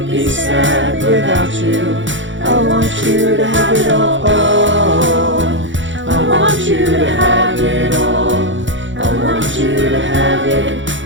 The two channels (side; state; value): left; late; 0.55 ms